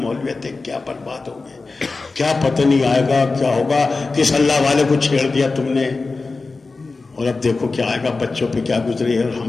ہے, کیا برباد ہو گئے, کیا پتہ نہیں آئے گا, کیا ہوگا, کس اللہ والے کو چھیڑ دیا تم نے, اور اب دیکھو کیا آئے گا, بچوں پہ کیا گزری ہے اور ہم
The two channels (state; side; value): quieter; right; 3.8 dB